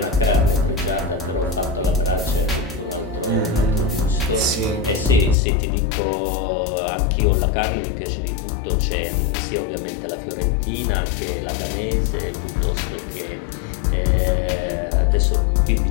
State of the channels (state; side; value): drops out; right; at 5.4 s